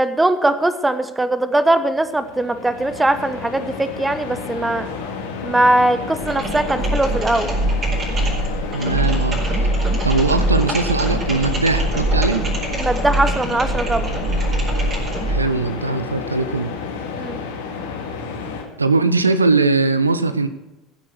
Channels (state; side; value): normal; both; correlation 0.32